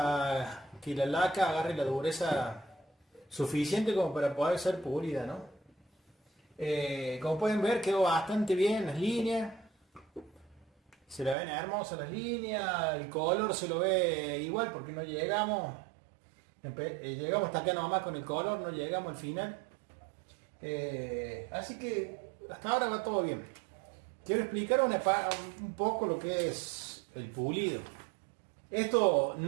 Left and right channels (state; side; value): drops out; left; at 11.4 s